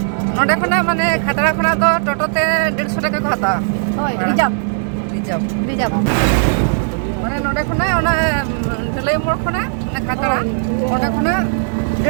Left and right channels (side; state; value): left; silent; 65 dB below the other